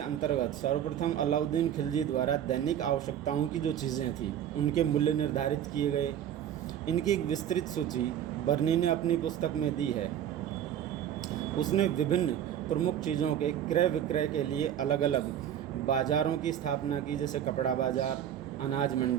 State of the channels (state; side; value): quieter; left; 10.1 dB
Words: सर्वप्रथम अलाउद्दीन खिलजी द्वारा दैनिक आवश्यकताओं की जो चीज़ें थी उनके मूल्य निर्धारित किए गए। इनकी एक विस्तृत सूची बर्नी ने अपनी पुस्तक में दी है। उसने विभिन्न प्रमुख चीज़ों के क्रय विक्रय के लिए अलग अलग बाज़ारों की स्थापना की, जैसे कपड़ा बाज़ार, अनाज